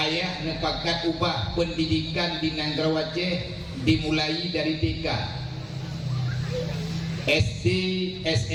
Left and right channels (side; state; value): both; identical; correlation 1.00